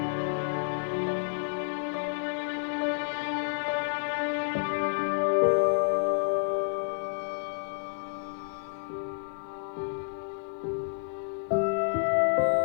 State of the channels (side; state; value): right; silent; digital silence